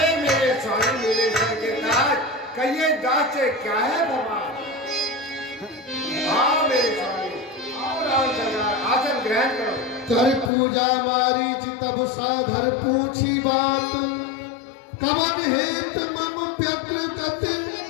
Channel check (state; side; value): drops out; right; at 10.5 s